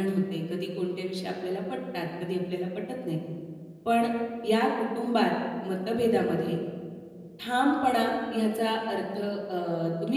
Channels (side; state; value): both; identical; correlation 1.00